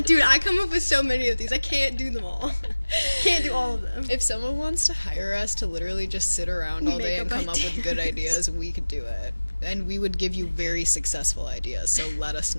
dude, I come up with so many of these. I can't do them all. Can't do all of them. If someone wants to hire us to literally just sit around all day and come up with good ideas, we could do it. and we would give you very successful ideas, so let us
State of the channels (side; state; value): both; inverted; correlation -1.00